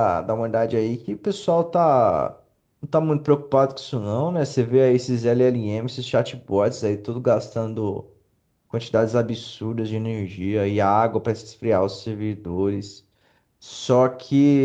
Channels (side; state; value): both; identical; correlation 1.00